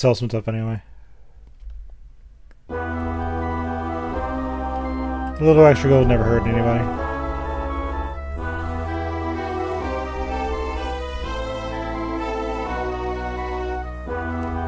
some stuff anyway. A little extra gold never hurt anybody.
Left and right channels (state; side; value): identical; both; correlation 1.00